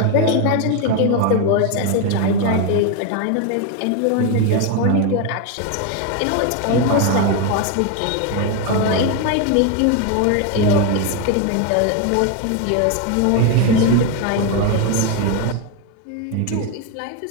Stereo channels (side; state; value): both; different; correlation 0.02